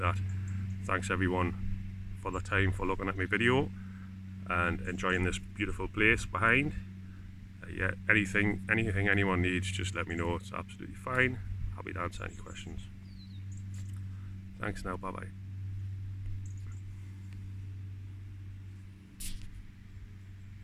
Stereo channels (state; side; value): identical; both; correlation 1.00